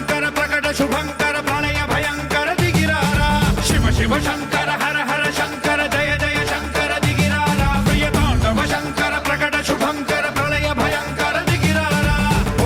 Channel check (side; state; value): both; identical; correlation 1.00